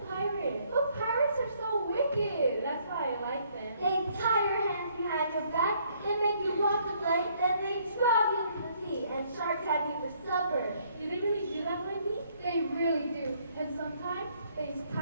pirates. But pirates are so wicked. That's why I like them. They tie your hands behind your back, they make you walk the plank, then they drop you into the sea, and sharks have you for supper. Do they really do that, Wendy? They really do. And sometimes they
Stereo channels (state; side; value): inverted; both; correlation -0.66